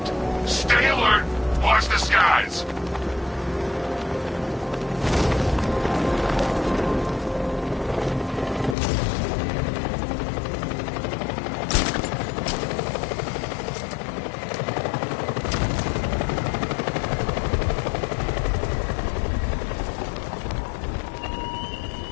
Stay alert. Watch the skies.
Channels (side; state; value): right; drops out; at 8.8 s